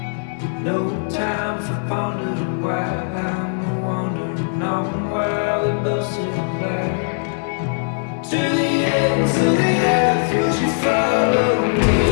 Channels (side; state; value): right; silent; digital silence